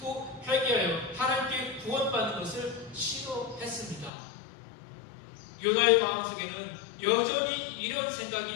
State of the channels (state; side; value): drops out; right; at 4.1 s